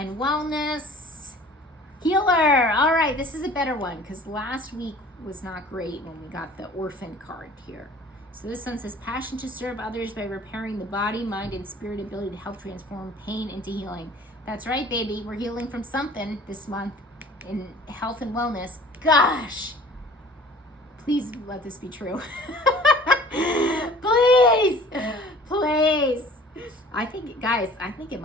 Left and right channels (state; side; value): normal; both; correlation 0.48